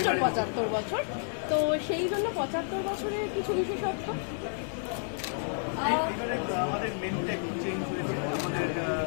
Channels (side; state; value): right; silent; digital silence